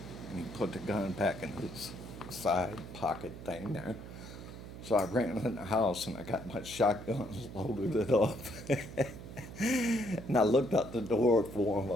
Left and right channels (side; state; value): right; noise; hum, 12 dB below the sound